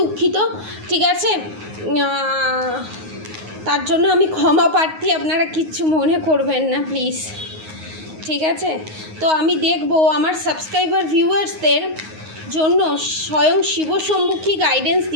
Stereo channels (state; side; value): late; left; 9.5 ms